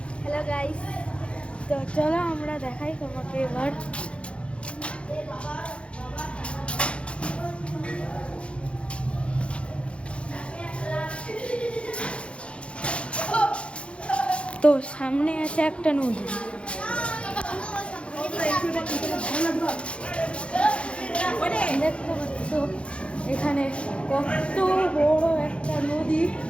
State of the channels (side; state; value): right; late; 0.059 ms